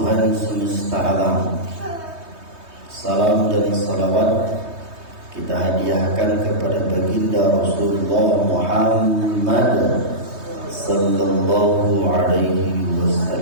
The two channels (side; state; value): left; late; 3.2 ms